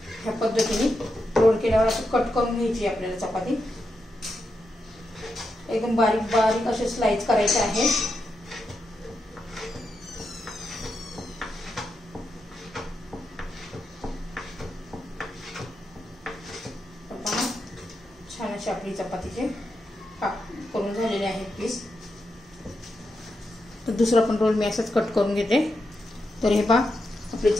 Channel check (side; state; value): both; normal; correlation 0.86